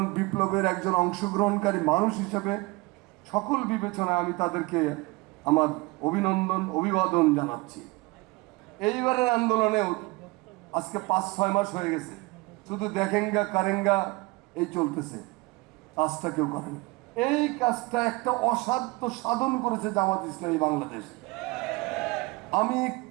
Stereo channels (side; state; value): left; quieter; 24.1 dB